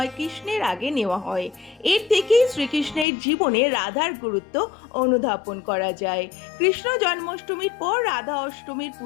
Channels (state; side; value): drops out; right; at 3.1 s